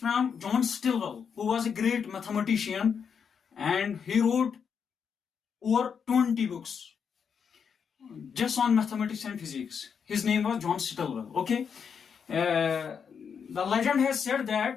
John Stilwell, who was a great mathematician, and he wrote over 20 books just on mathematics and physics. His name was John Stilwell. Okay. The legend has said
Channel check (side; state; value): right; quieter; 6.8 dB